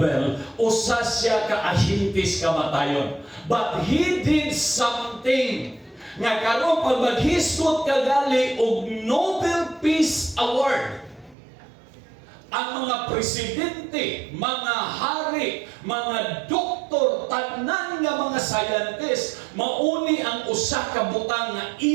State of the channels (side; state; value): left; drops out; at 11.4 s